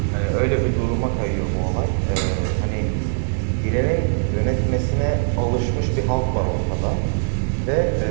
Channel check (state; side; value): silent; left; digital silence